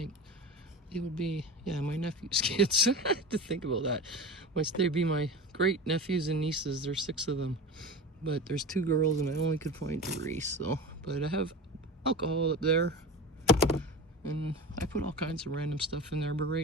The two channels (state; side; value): normal; both; correlation 0.29